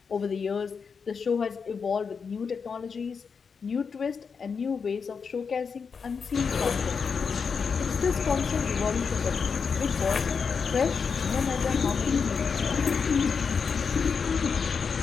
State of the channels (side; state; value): right; quieter; 5.8 dB